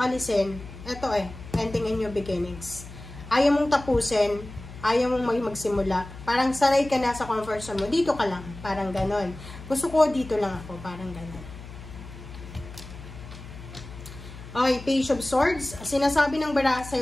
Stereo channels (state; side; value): noise; left; hum, 14 dB below the sound